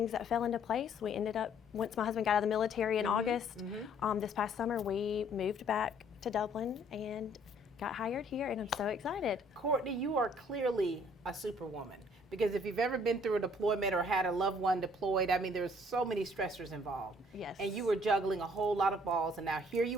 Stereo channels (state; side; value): normal; both; correlation 0.60